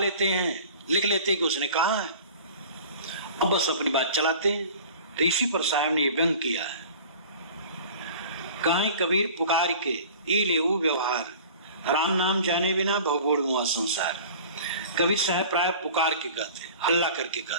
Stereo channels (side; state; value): both; inverted; correlation -0.43